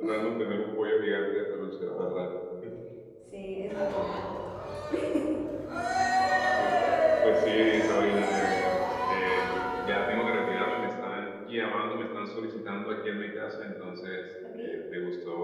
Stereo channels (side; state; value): both; identical; correlation 1.00